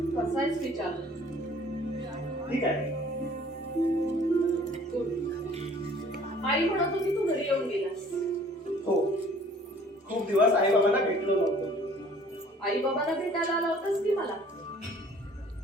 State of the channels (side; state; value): both; normal; correlation 0.53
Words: कसा आहेस विचार. ठीक आहे. आई म्हणत होती तू घरी येऊन गेलास. हो, खूप दिवस आई बाबांना भेटलो नव्हतो. आई बाबांना भेटायला आला होतास की मला?